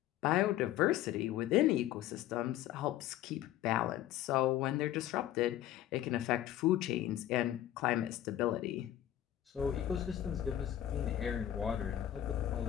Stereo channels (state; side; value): quieter; right; 12.5 dB